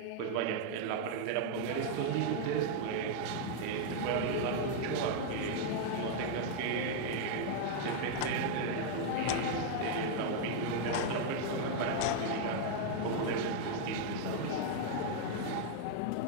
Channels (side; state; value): both; different; correlation 0.00